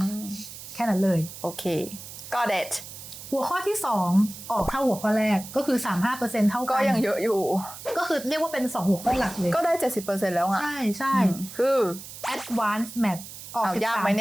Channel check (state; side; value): noise; right; hiss, 13 dB below the sound